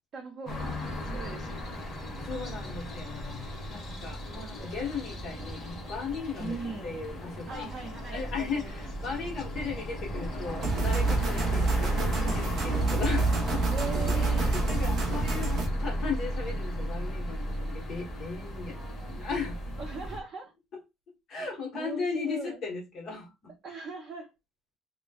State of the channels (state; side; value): normal; both; correlation 0.72